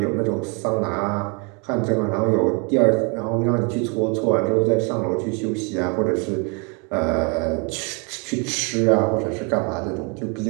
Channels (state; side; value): quieter; left; 34.0 dB